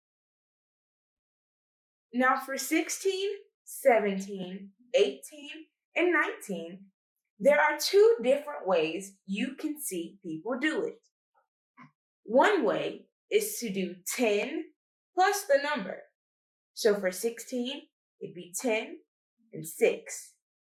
Now for 16, 17, 18, and 19, there are 2 different ways you can see people do it. One way is to do 10 plus the number. So for 16, it'd be 10 and 6.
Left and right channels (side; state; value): both; identical; correlation 1.00